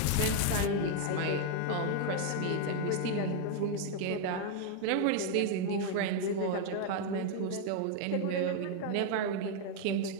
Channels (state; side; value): different; both; correlation 0.00